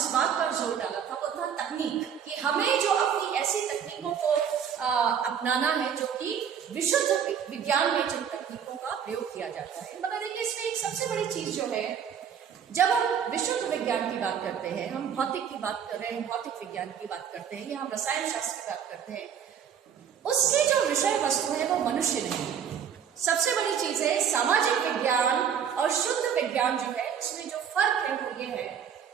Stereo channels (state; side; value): quieter; left; 8.1 dB